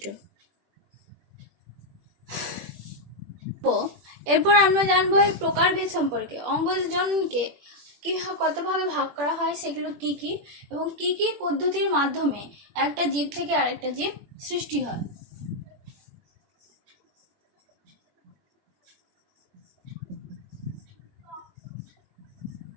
এরপর আমরা জানবো এই প্রকারভেদ সম্পর্কে। অঙ্গজ জননকে কি কত ভাগে ভাগ করা হয়, সেগুলো কি কি, এবং কি কি পদ্ধতির মাধ্যমে একটা জীব থেকে আরেকটা জীব সৃষ্টি হয়।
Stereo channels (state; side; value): late; left; 21 ms